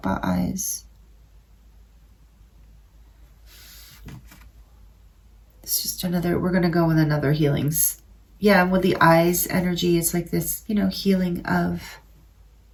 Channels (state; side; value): identical; both; correlation 1.00